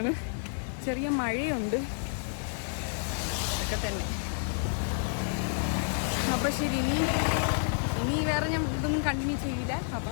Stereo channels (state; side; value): silent; right; digital silence